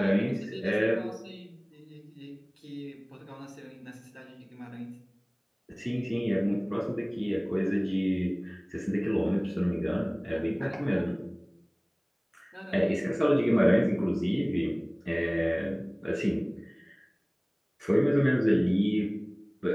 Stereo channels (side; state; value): both; identical; correlation 1.00